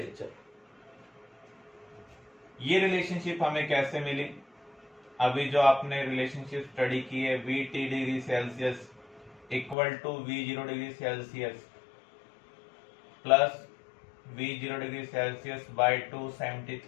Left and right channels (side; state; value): right; drops out; at 9.8 s